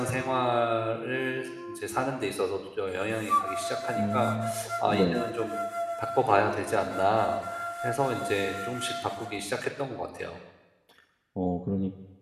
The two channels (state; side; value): identical; both; correlation 1.00